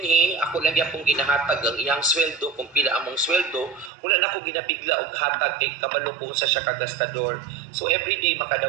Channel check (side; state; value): left; drops out; at 3.9 s